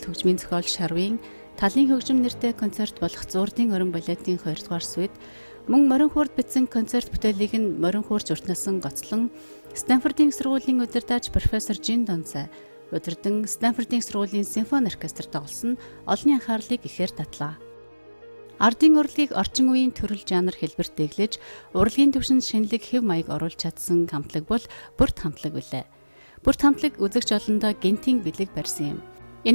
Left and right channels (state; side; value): inverted; both; correlation -1.00